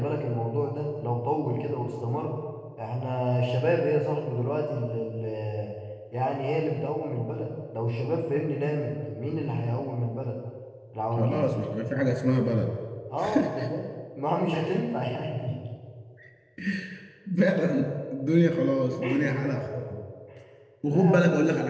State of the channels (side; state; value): both; identical; correlation 1.00